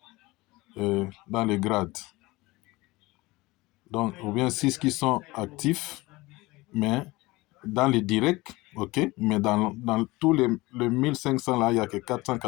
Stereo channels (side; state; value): right; quieter; 21.2 dB